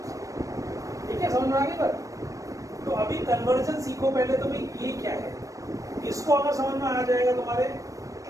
ठीक है, समझ में आ गई बात? तो अभी कन्वर्जन सीखो पहले, तो भाई ये क्या है, इसको अगर समझ में आ जाएगा तुम्हारे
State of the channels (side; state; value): left; late; 0.16 ms